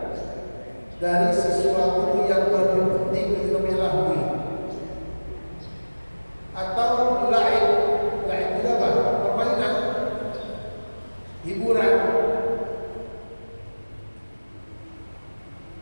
dari sesuatu yang lebih penting itu melahui. Atau lain itu apa? Permainan, hiburan.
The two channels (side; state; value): both; inverted; correlation -1.00